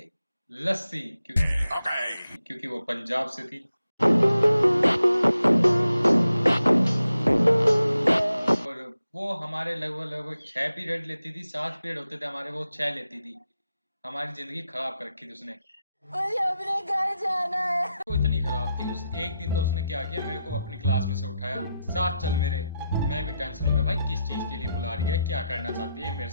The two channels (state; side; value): inverted; both; correlation -0.86